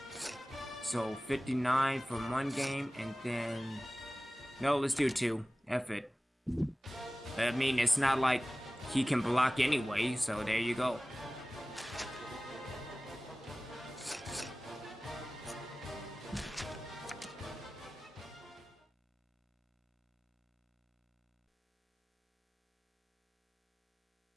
So 59 from one game, and then no, let's do 2. F it. I mean, it's not like he can block anyway, so there you go.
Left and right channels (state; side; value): normal; both; correlation 0.97